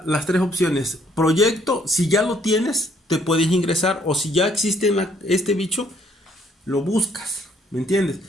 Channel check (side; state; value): both; normal; correlation 0.66